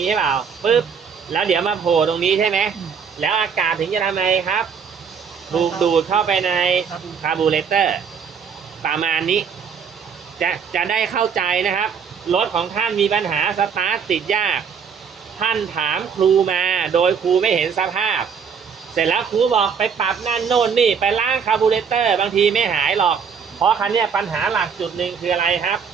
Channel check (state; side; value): quieter; left; 6.6 dB